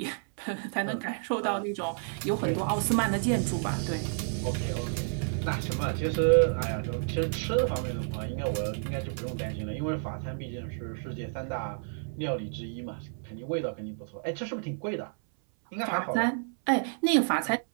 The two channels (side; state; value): left; silent; 58 dB below the other